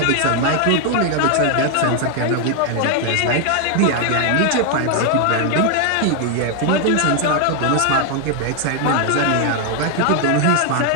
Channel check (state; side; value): different; both; correlation 0.00